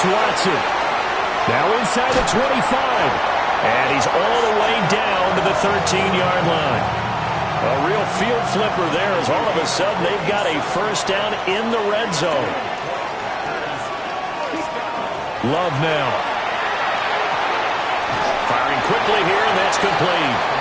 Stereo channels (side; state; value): both; identical; correlation 1.00